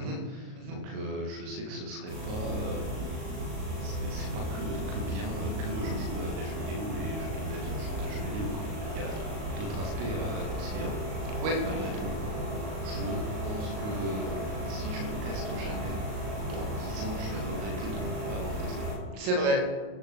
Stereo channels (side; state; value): left; late; 38 ms